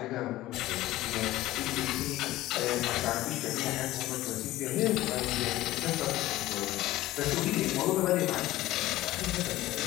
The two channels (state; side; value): quieter; right; 16.3 dB